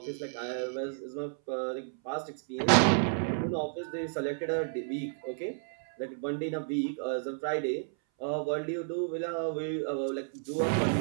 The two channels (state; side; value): silent; left; 57 dB below the other